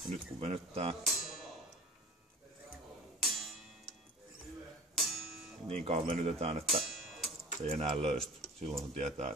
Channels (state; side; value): normal; both; correlation 0.42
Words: Ja nyt kun venyttää, niin kauan venytetään, että se ei enää löysty. Silloin se tietää,